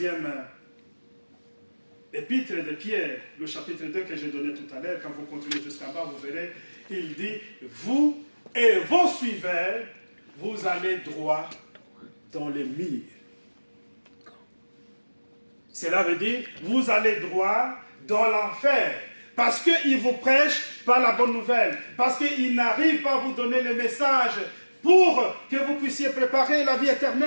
épître de Pierre, le chapitre 2 que j'ai donné tout à l'heure, quand vous continuez jusqu'en bas, vous verrez, il dit, vous et vos suiveurs, vous allez droit dans les murs. Cela veut dire, vous allez droit dans l'enfer. Parce qu'ils vous prêchent pas la bonne nouvelle. Parce qu'ils n'arrivent pas à vous donner le message pour que vous puissiez préparer la vie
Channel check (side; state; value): both; inverted; correlation -1.00